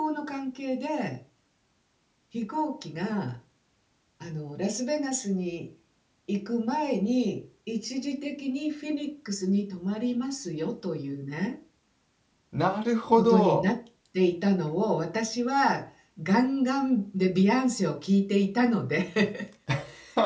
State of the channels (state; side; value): identical; both; correlation 1.00